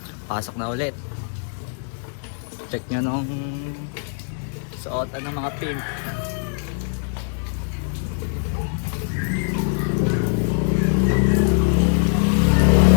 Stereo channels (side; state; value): right; silent; 62 dB below the other